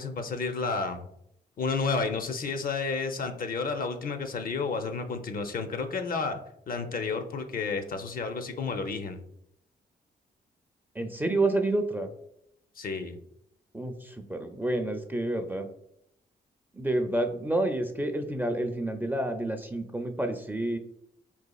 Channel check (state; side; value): normal; both; correlation 0.58